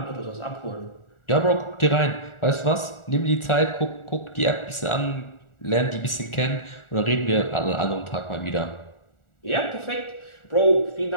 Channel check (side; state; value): right; late; 1.4 ms